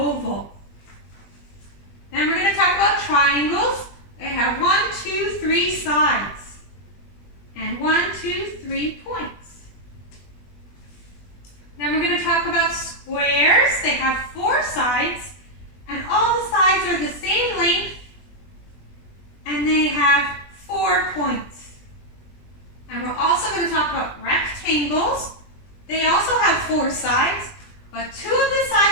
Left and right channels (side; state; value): right; late; 20 ms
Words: Then we're going to talk about triangles. They have 1, 2, 3 sides. And 1, 2, 3 points. Then we're going to talk about squares. They have 4 sides. And all the sides are the same length. And they have 4 points. And we're also going to talk about rectangles. They also have 4 sides, but 2 of the